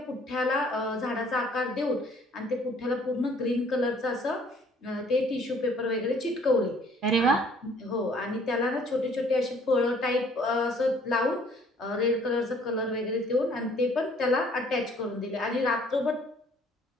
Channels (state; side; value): normal; both; correlation 0.58